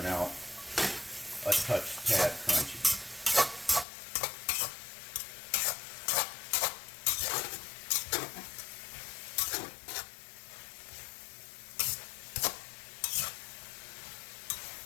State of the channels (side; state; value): right; drops out; at 3.9 s